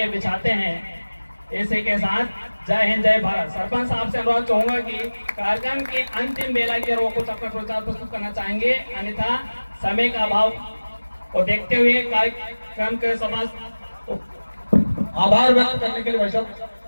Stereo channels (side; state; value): both; inverted; correlation -1.00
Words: बिछाते हैं। इसी के साथ जय हिंद, जय भारत। सरपंच साहब से अनुरोध चाहूंगा कि कार्यक्रम के अंतिम बेला की ओर कुछ अपना प्रचार प्रस्तुत करना चाहेंगे, अन्यथा समय का अभाव को देखते हुए कार्यक्रम के समस्त आभार व्यक्त करने के लिए वैसे